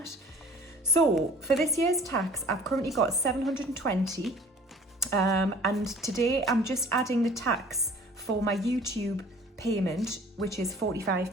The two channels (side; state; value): both; normal; correlation 0.49